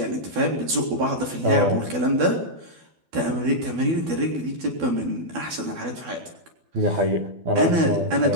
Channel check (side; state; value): left; late; 12 ms